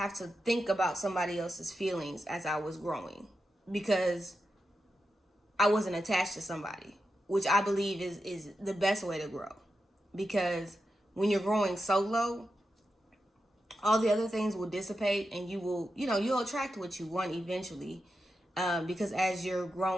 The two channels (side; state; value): both; normal; correlation 0.88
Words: to think about somebody else's feelings as I was growing, because I wasn't attached to somebody, which I believe is the best way to grow. Because when you're growing solo, all the other things will dissipate, and you'll attract what you want eventually. Because as you're